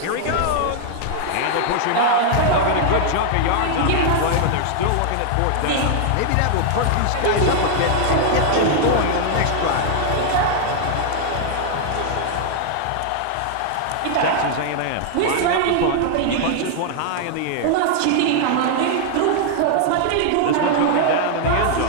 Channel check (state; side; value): different; both; correlation 0.00